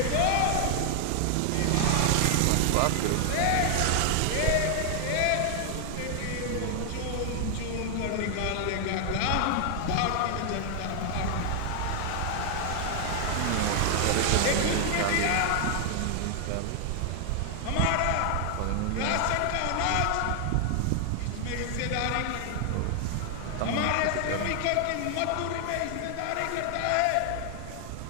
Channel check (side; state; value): both; different; correlation 0.00